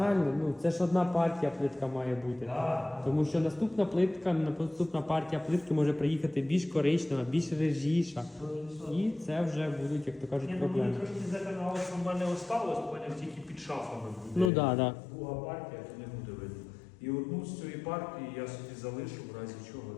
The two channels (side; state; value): right; drops out; at 14.5 s